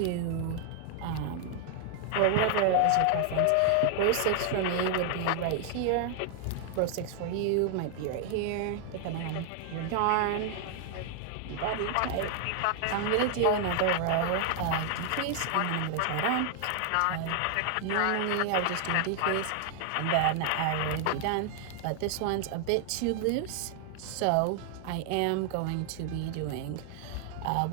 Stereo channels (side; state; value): both; different; correlation 0.00